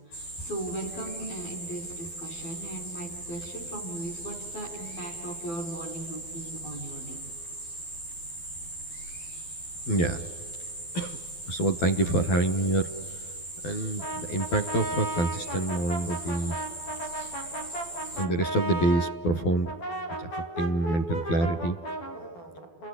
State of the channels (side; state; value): right; late; 12 ms